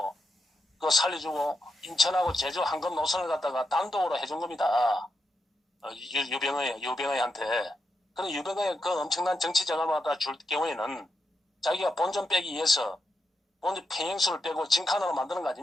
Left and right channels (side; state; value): both; normal; correlation 0.85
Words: 그 살려주고 인천하고 제주 한금 노선을 갖다가 단독으로 해준 겁니다. 유병의한테. 그런 유병의 그 엄청난 정치 자금을 갖다 줄 경우에는 자기가 본전 빼기 위해서 본전 평행수를 빼고 진칸으로 만드는 거